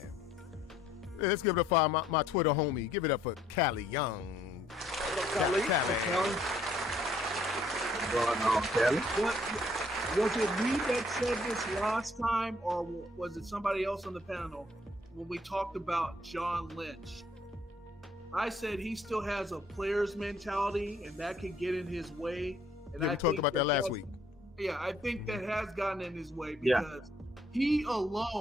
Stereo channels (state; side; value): normal; both; correlation 0.64